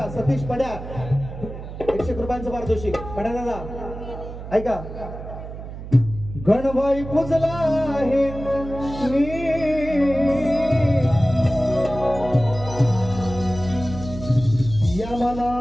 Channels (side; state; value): right; noise; hum, 11 dB below the sound